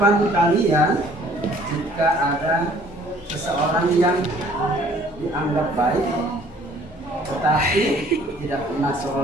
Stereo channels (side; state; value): both; normal; correlation 0.57